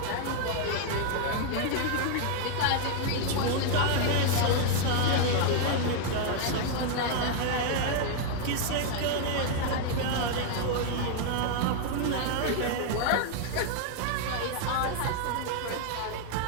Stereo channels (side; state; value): both; different; correlation 0.00